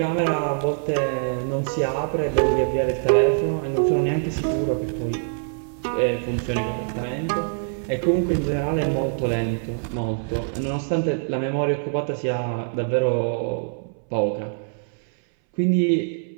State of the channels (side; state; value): left; silent; 61 dB below the other